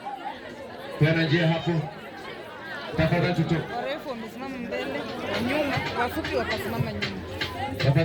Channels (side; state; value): both; identical; correlation 1.00